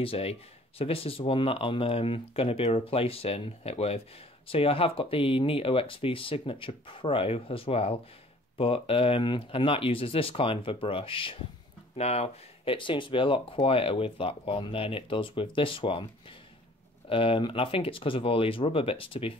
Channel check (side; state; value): both; normal; correlation 0.53